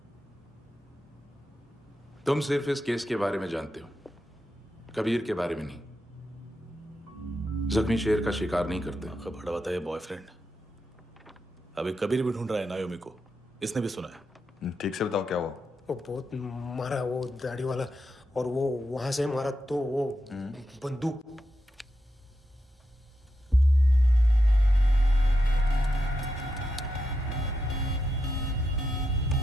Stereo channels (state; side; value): normal; both; correlation 0.86